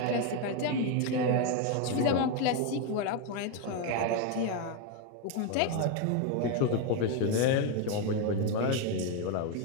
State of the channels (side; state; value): both; different; correlation 0.02